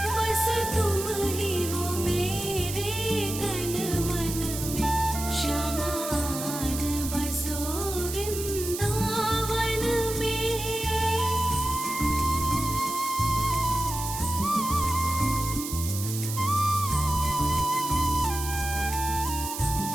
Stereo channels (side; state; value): right; noise; hiss, 7 dB below the sound